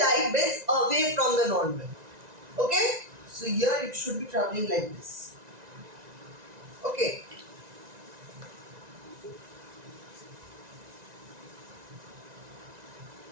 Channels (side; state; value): left; late; 1.9 ms